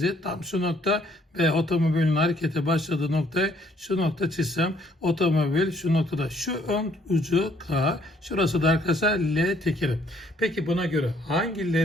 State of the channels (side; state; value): both; normal; correlation 0.64